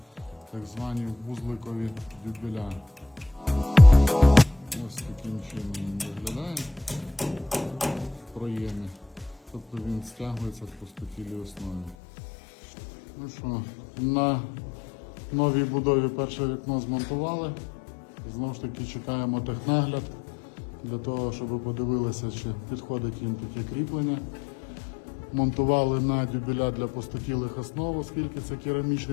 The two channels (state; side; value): drops out; right; at 12.0 s